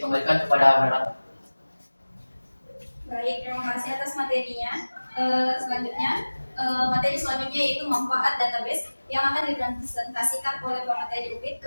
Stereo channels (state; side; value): inverted; both; correlation -1.00